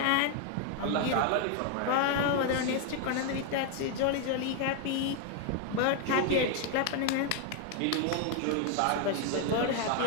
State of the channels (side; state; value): both; different; correlation 0.00